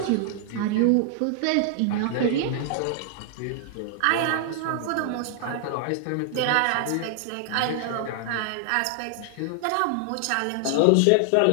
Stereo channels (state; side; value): different; both; correlation 0.00